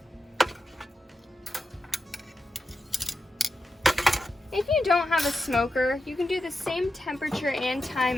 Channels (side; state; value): both; normal; correlation 0.89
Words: If you don't have a smoker, you can do the same temperature and